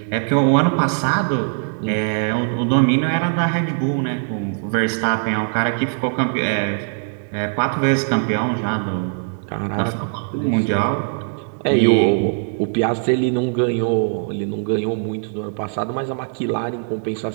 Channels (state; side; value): silent; left; digital silence